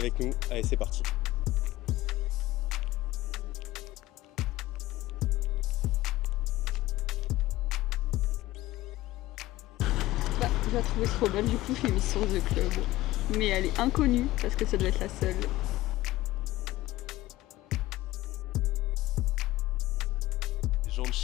nous. Allez, c'est parti. Je la trouvais trop belle, du coup je l'ai mise sur The Club. Mais elle est inconnue parce que ça doit être la seule. Les gens de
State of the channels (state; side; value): quieter; right; 17.0 dB